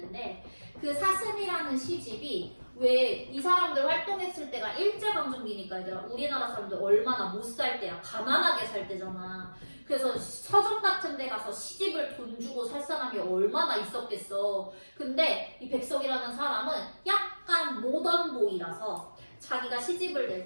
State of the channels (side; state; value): both; inverted; correlation -1.00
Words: 그 사슴이라는 시집이 왜 이 사람들 활동했을 때가 일제강점기니까 얘들아 우리나라 사람들 얼마나 못 살 때야 가난하게 살 때잖아. 그래서 서점 같은 데 가서 시집을 돈 주고 살 사람이 얼마나 있었겠어. 근데 이 백석이라는 사람은 약간 모던보이라서 자기가 시집을